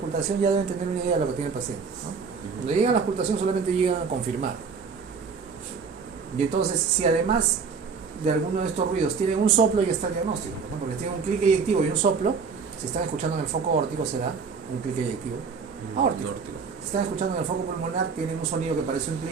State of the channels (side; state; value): left; quieter; 5.4 dB